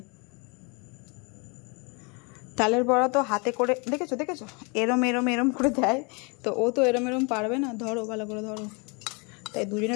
তালের বড়া তো হাতে করে দেখেছো দেখেছো, এরম এরম এরম করে দেয়, তো ও তো এরম এরম পারবে না। ধরো ভালো করে ধরো। তাই দুজনে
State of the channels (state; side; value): quieter; right; 31.5 dB